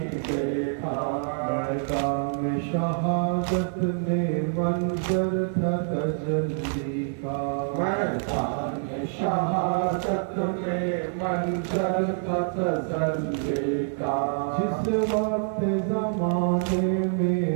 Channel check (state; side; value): silent; left; 56 dB below the other